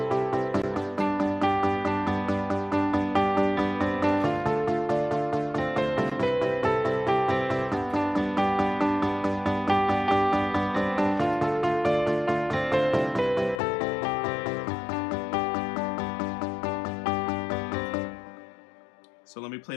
So let me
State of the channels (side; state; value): right; drops out; at 13.6 s